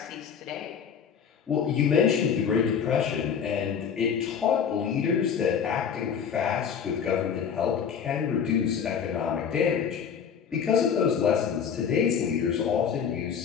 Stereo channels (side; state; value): right; quieter; 7.3 dB